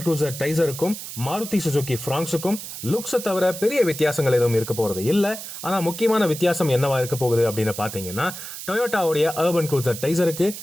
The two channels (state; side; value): noise; right; hiss, 10 dB below the sound